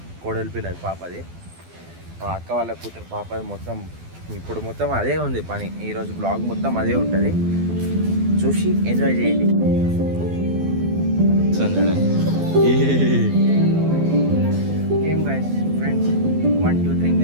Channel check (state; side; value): late; left; 12 ms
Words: కోడలి పిల్లది, పాపది, మా అక్క వాళ్ళ కూతురు పాపది. ఇప్పుడు మొత్తం అదే ఉంది పని. ఈరోజు బ్లాగ్ మొత్తం అదే ఉంటుంది, చూసి ఎంజాయ్ చేయండి. Game guys, friends, 1 2 3